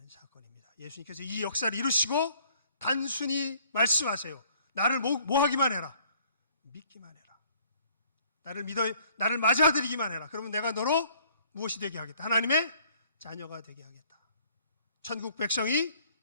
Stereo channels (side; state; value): both; inverted; correlation -0.61